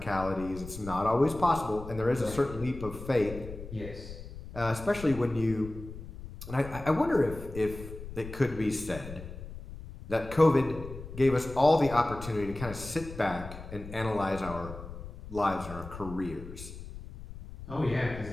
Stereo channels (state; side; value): noise; left; rumble, 12 dB below the sound